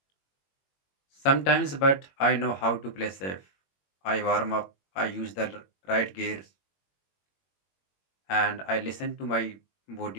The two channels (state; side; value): late; right; 21 ms